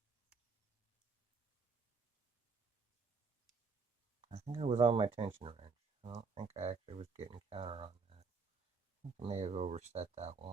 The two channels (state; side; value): quieter; left; 4.8 dB